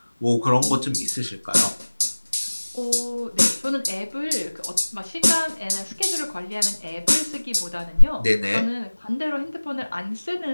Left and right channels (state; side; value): inverted; both; correlation -1.00